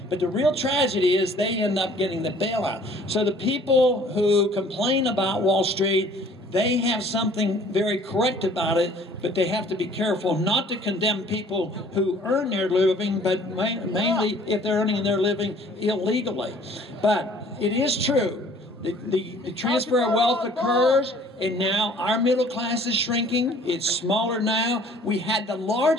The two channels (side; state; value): both; normal; correlation 0.54